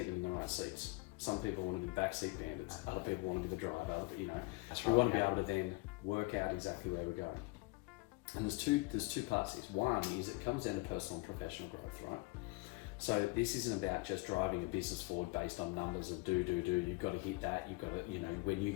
them in the right seats. Some people want to be backseat bandits. Other people want to be the driver. That's right, we want to be able to then work out exactly where we're going. And there's two parts to this. One is it comes down to personal and professional growth, right? So this isn't about just driving a business forward based on numbers of do, you've got to hit that, you've got to, when you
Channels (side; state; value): right; quieter; 24.4 dB